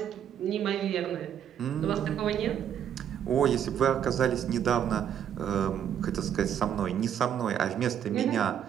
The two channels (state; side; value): quieter; left; 9.3 dB